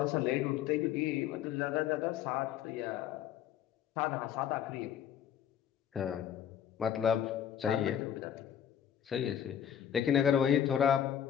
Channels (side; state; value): right; quieter; 9.7 dB